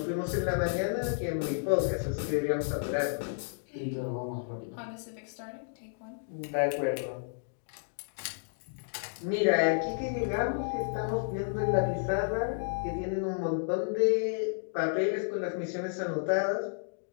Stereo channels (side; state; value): right; silent; digital silence